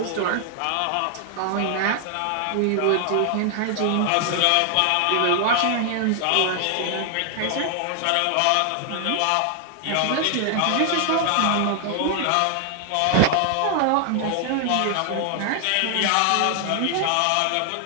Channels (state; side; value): different; both; correlation 0.00